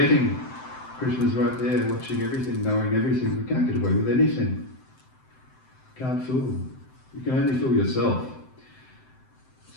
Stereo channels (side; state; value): right; late; 7.8 ms